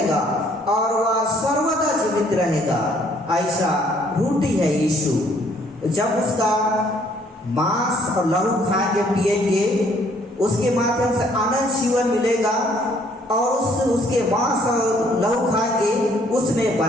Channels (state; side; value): normal; both; correlation 0.63